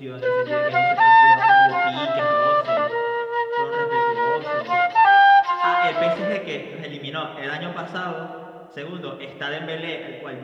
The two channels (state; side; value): identical; both; correlation 1.00